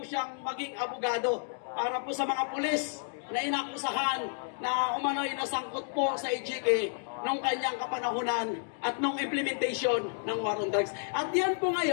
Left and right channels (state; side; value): silent; right; digital silence